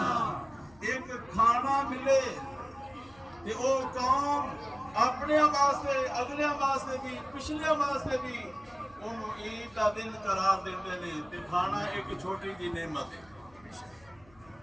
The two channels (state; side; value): noise; left; hum, 27 dB below the sound